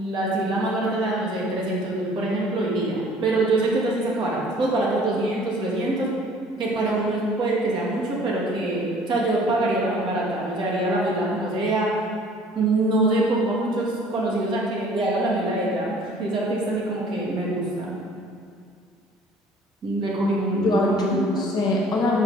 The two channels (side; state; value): both; normal; correlation 0.53